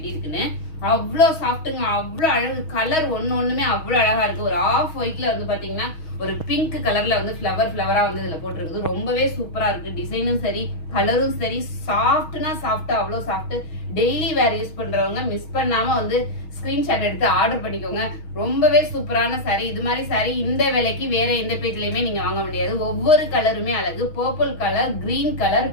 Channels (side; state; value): right; late; 6.3 ms